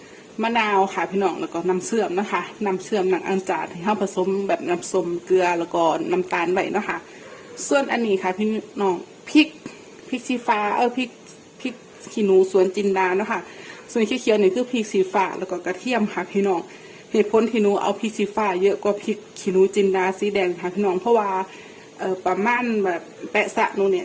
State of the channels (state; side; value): identical; both; correlation 1.00